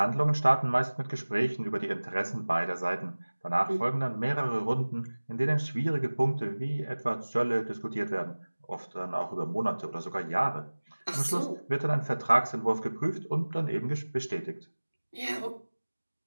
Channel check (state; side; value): inverted; both; correlation -1.00